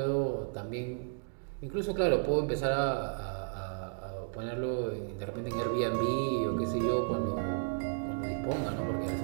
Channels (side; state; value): left; silent; digital silence